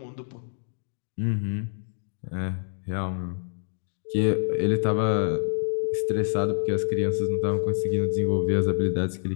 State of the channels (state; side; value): silent; right; digital silence